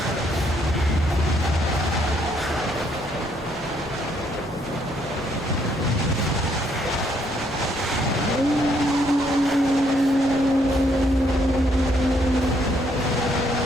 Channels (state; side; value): normal; both; correlation 0.70